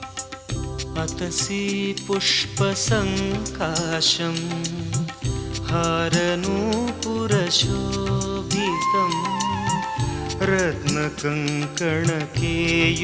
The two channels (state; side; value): identical; both; correlation 1.00